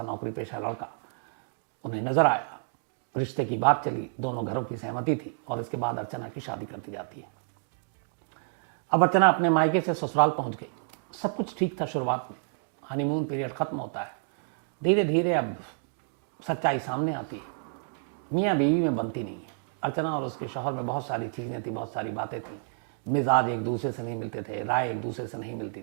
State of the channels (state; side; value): silent; left; digital silence